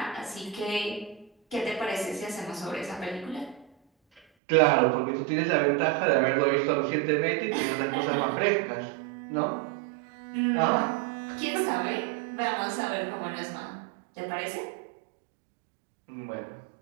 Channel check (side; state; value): left; drops out; at 4.2 s